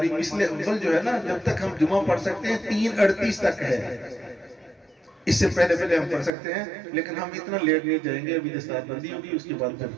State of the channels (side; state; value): left; drops out; at 6.3 s